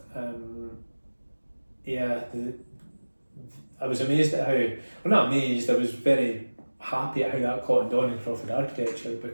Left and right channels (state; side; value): inverted; both; correlation -1.00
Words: I was amazed at not amazed, I was very happy at how that caught on in Crawford Architecture,